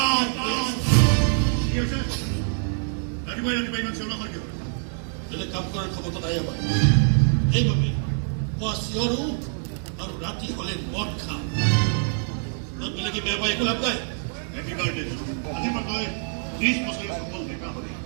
বেলেগ কাম কৰাৰ ক্ষমতা নাই আমাৰ সেইবাবে পুৱা চিঞৰো আৰু ৰাতি হলে মদ খাওঁ বেলেগে বেয়া পাই একো লাভ নাই আজি মই 30 বছৰৰ সফল দেখা হয়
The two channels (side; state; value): left; silent; 62 dB below the other